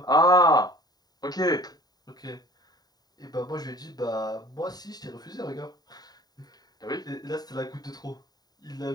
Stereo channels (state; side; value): late; right; 0.19 ms